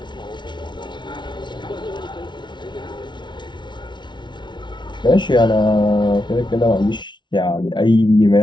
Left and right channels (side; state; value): right; late; 0.23 ms